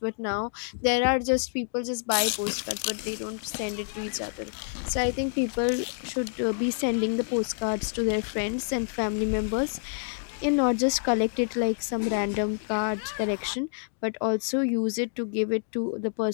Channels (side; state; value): right; silent; digital silence